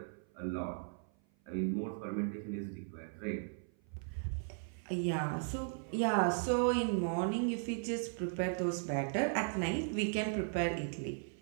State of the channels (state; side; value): silent; left; 53 dB below the other